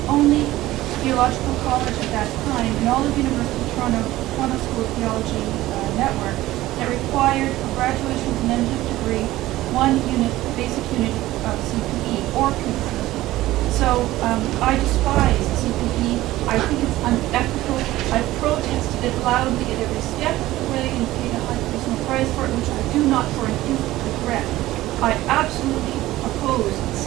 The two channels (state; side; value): quieter; left; 16.4 dB